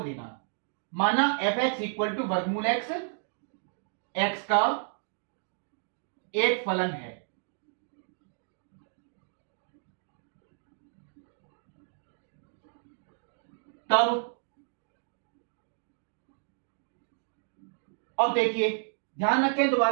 लेना है। माना fx इक्वल टू वर्गमूल x, x का एक फलन है। तब अब देखिए, ध्यान रखें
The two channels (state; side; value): silent; left; digital silence